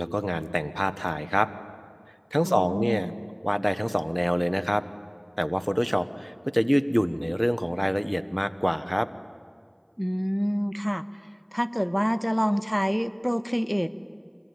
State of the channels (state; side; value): identical; both; correlation 1.00